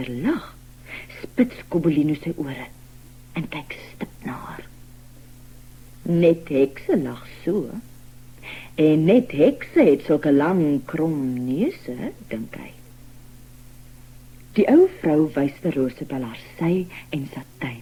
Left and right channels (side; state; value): both; identical; correlation 1.00